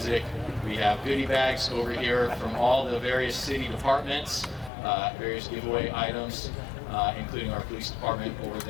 We have goodie bags over here from all the various city departments, various giveaway items, including our police department over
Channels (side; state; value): right; drops out; at 4.7 s